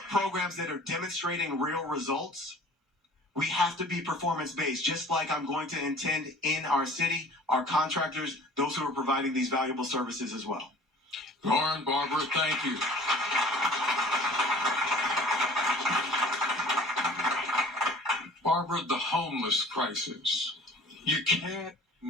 programs that are demonstrating real results We have to be performance-based, just like I'm going to intend in our city, our contractors, those who are providing these valuable services as well. Loren, Barbara, thank you. Barbara, the homeless crisis. You can't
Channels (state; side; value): normal; both; correlation 0.47